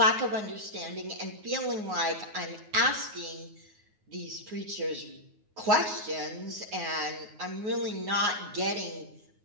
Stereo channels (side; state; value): left; late; 9.5 ms